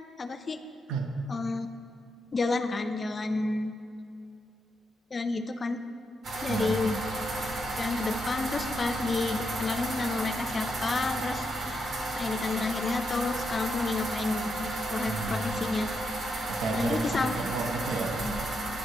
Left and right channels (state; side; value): normal; both; correlation 0.82